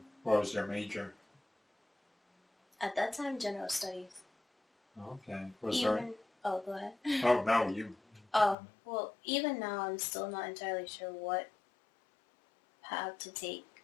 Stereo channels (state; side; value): drops out; right; at 8.6 s